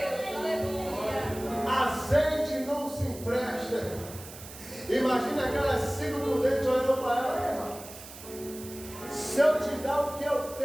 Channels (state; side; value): noise; right; hiss, 15 dB below the sound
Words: Azeite não se empresta. Imagina aquelas 5 prudentes olhando para ela. Se eu te dar o que eu